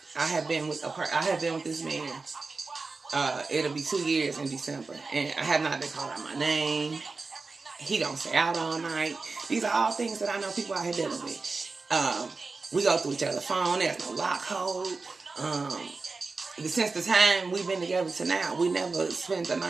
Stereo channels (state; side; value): quieter; left; 4.0 dB